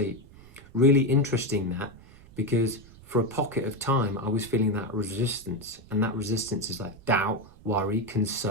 Really interesting that, because for a pocket of time, I was feeling that resistance. And that resistance is like doubt, worry,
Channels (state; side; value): noise; right; rumble, 22 dB below the sound